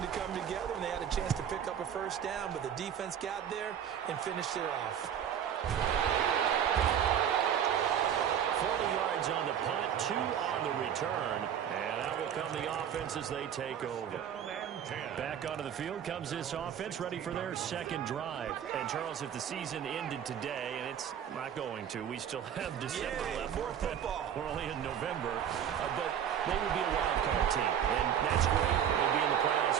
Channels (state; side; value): quieter; left; 9.1 dB